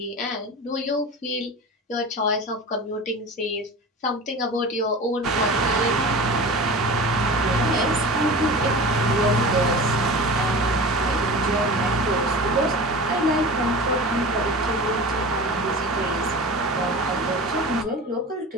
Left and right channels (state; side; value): normal; both; correlation 0.34